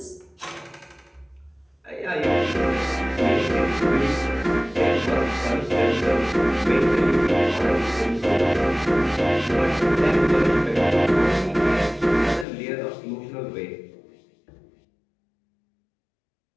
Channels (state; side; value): drops out; right; at 12.5 s